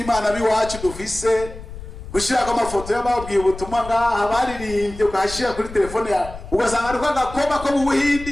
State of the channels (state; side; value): noise; left; rumble, 13 dB below the sound